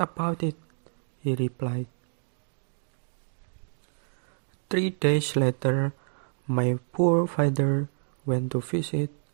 it, he replied. 3 days later, my poor father went to visit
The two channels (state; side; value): silent; left; digital silence